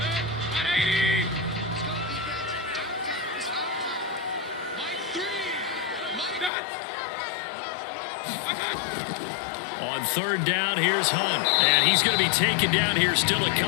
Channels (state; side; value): drops out; right; at 6.5 s